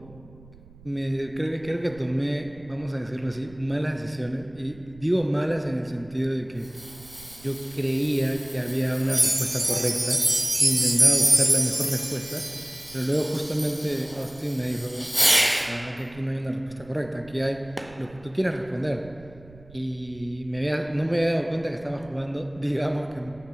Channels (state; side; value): noise; right; rumble, 22 dB below the sound